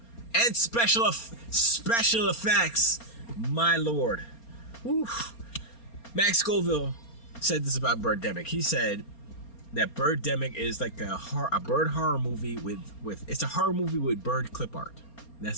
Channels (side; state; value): right; late; 4.3 ms